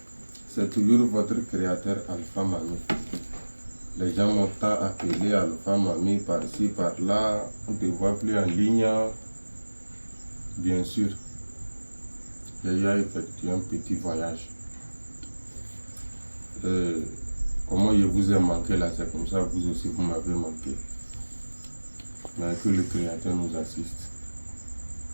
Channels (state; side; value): inverted; both; correlation -1.00